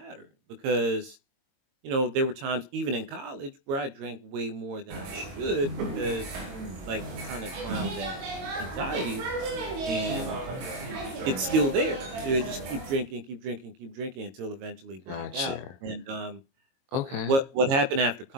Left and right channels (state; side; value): late; left; 22 ms